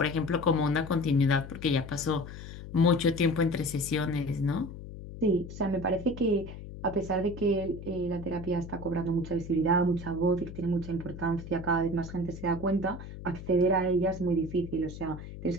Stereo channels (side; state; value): left; noise; hum, 12 dB below the sound